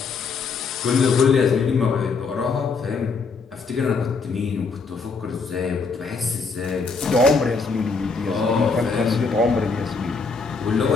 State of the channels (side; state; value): right; quieter; 4.7 dB